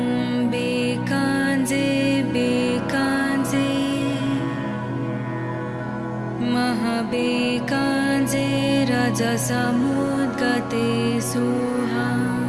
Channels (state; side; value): identical; both; correlation 1.00